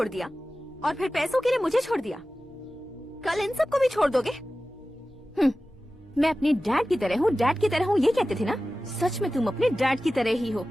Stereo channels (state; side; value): normal; both; correlation 0.95